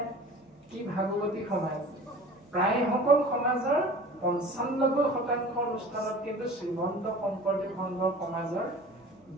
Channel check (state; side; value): normal; both; correlation 0.42